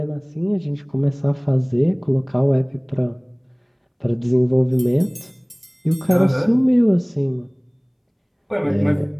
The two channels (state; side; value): identical; both; correlation 1.00